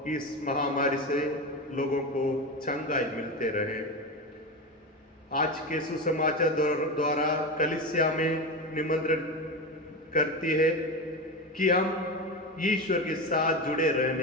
इस महामारी से लोगों को चंगाई मिलते रहे। आज के सुसमाचार द्वारा कलीसिया में निमंत्रण करती है कि हम ईश्वर के साथ जुड़े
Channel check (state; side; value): normal; both; correlation 0.20